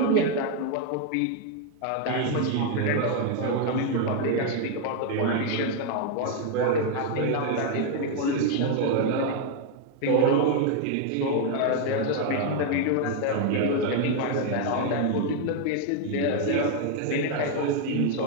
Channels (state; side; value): different; both; correlation 0.01